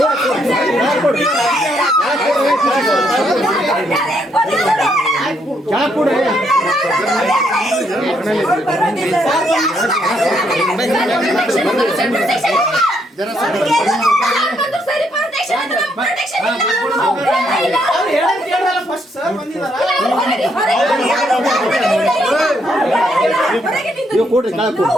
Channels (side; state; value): both; normal; correlation 0.74